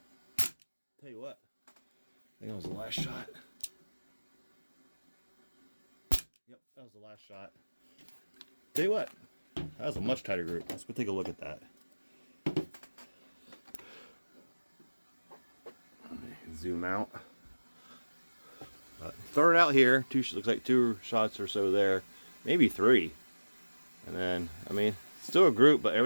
Tell you what, I think that was the last shot. Yep, that was the last shot. Tell you what, that was a much tighter group. Let's go take a look at that. Zoom out. Throw it out here. Looks like 2 shots or so there, maybe 3. And then, I mean, still a group, but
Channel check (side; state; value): both; inverted; correlation -1.00